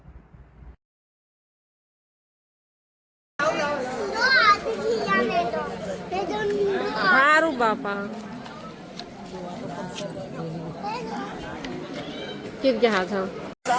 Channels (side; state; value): both; identical; correlation 1.00